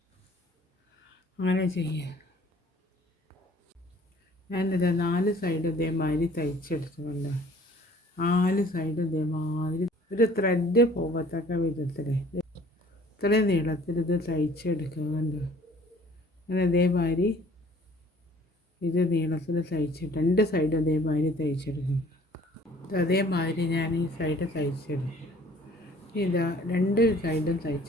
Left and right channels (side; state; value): both; normal; correlation 0.54